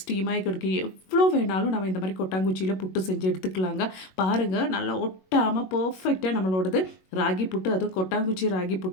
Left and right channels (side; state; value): right; late; 21 ms